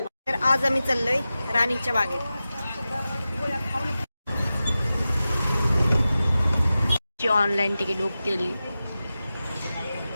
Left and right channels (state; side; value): inverted; both; correlation -0.94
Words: तर आज आम्ही चाललोय राणीच्या बागेत. ऑनलाईन तिकीट बुक केली.